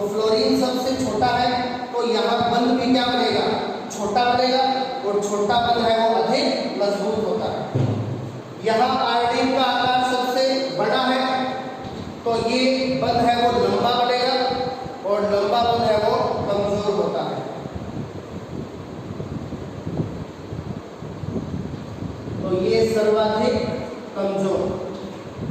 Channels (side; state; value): both; identical; correlation 1.00